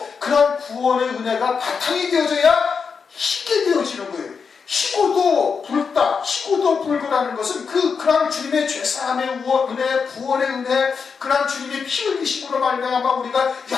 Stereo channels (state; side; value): quieter; right; 5.7 dB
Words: 그러한 구원의 은혜가 바탕이 되어져야 희게 되어지는 거예요. 희고도 붉다, 희고도 붉으라는 것은 그러한 주님의 죄사함의 은혜, 구원의 은혜, 그러한 주님의 피 흘리심으로 말미암아 우리가